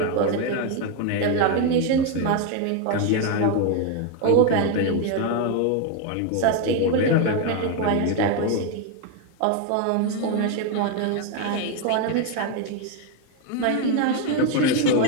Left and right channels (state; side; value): different; both; correlation 0.01